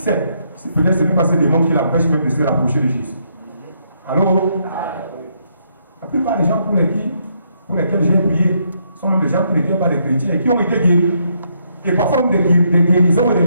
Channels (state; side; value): inverted; both; correlation -0.74